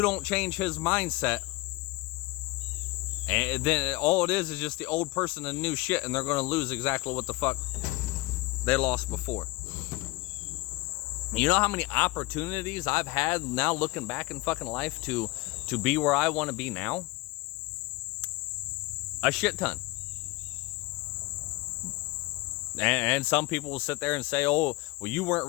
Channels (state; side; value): quieter; right; 21.9 dB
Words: don't change his mindset, and then all it is just the old person and new shit, and they're going to lose exactly what the fuck they lost before. You know how many opportunities I've had now looking back in fucking life to be where I want to be now? A shit ton. And some people will sit there and say, oh, well, you weren't